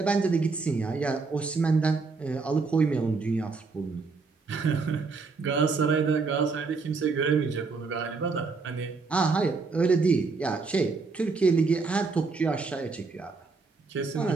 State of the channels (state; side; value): quieter; left; 4.3 dB